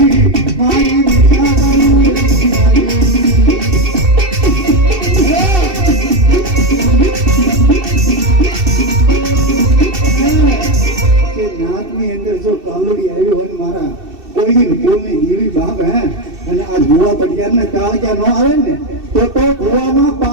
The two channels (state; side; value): late; left; 2.7 ms